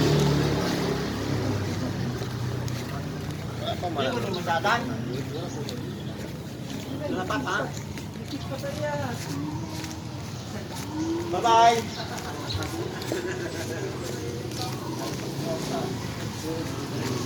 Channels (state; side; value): identical; both; correlation 1.00